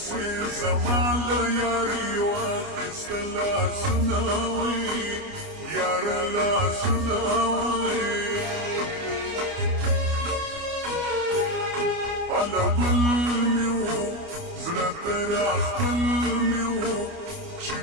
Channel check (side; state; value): left; late; 29 ms